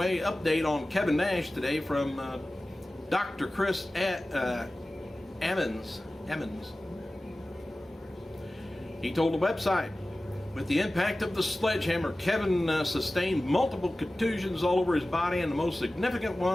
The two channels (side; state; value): both; normal; correlation 0.96